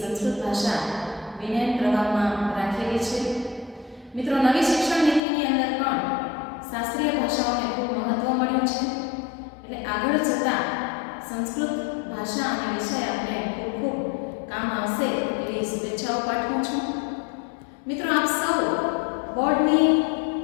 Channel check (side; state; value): right; drops out; at 5.2 s